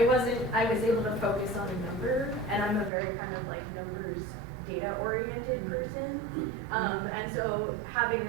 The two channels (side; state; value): left; drops out; at 2.9 s